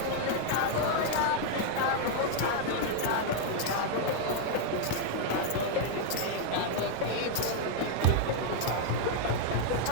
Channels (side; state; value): both; different; correlation 0.00